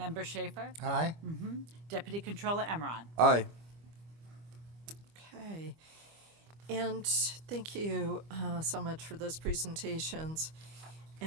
Schaefer? Aye? Deputy Controller Emron? Aye. Okay. And thank you so much for those presentations.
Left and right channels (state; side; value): late; left; 25 ms